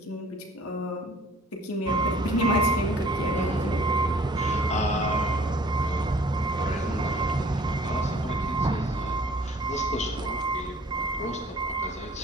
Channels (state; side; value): normal; both; correlation 0.53